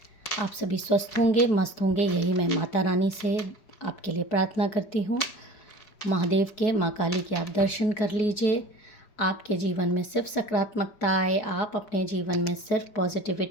आप सभी स्वस्थ होंगे, मस्त होंगे, यही मैं माता रानी से आपके लिए प्रार्थना करती हूँ। महादेव के, माँ काली के आप दर्शन कर लीजिए। आपके जीवन में सिर्फ सकारात्मकता आए, आप अपने जीवन में सिर्फ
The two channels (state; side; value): late; right; 4.9 ms